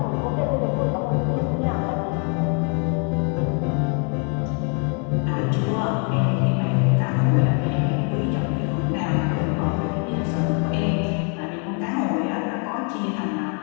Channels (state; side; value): quieter; right; 37.8 dB